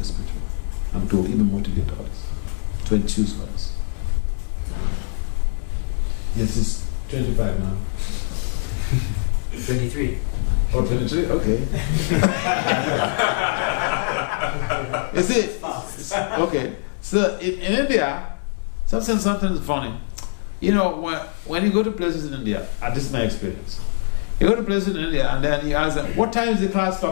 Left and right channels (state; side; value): silent; right; 64 dB below the other